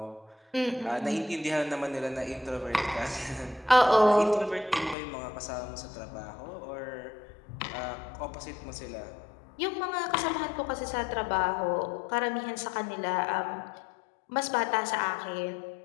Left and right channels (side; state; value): right; drops out; at 5.0 s